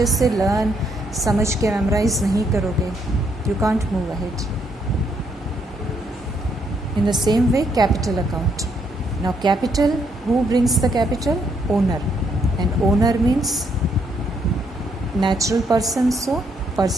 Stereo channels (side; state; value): both; normal; correlation 0.73